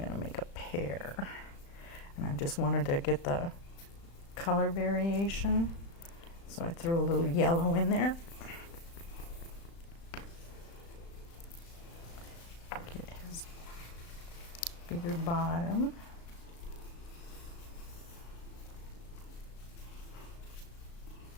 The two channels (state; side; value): late; right; 35 ms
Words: to make a pear. And I just wanted to get the color variation. So I threw a little yellow in there. Get his bigger bottom.